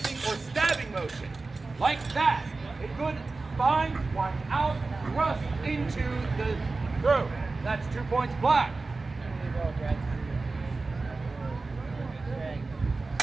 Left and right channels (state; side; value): quieter; left; 3.7 dB